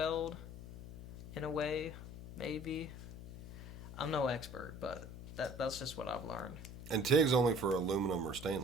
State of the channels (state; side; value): noise; left; hum, 12 dB below the sound